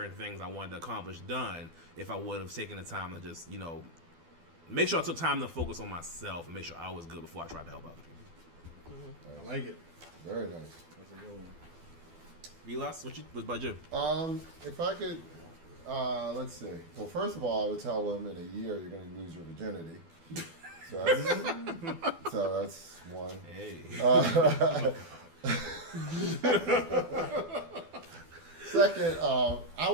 things I wanted to accomplish done if I would have taken the time to just, make sure I took time to focus on myself and make sure I was good before I tried to help other people. I like it. Very nice. That's a good one. Vilas, what about you? If I could, let's see. Well, first of all, I would tell them in a year you're going to lose your virginity. So that's one. Hey. Second, I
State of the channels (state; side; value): late; left; 12 ms